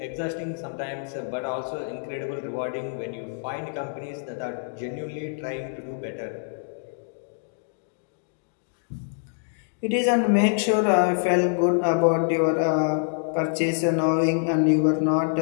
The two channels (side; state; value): right; silent; digital silence